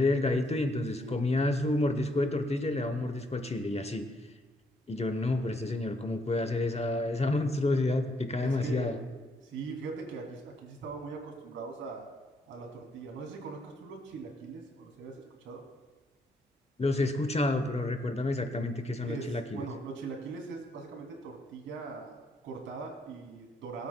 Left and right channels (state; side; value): normal; both; correlation 0.72